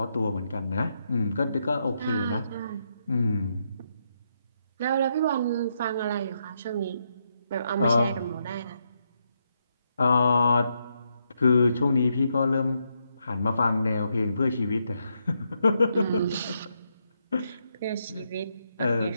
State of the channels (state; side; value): inverted; both; correlation -0.80